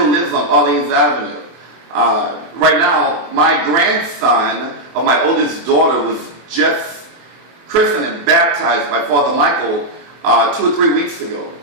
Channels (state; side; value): late; left; 24 ms